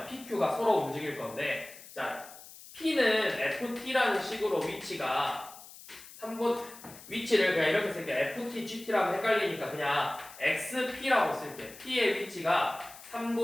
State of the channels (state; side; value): noise; left; hiss, 18 dB below the sound